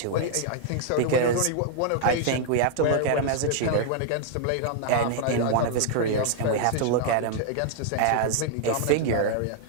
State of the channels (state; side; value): different; both; correlation -0.01